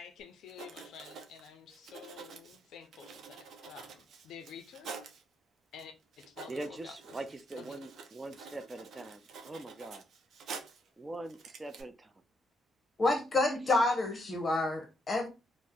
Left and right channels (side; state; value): both; normal; correlation 0.76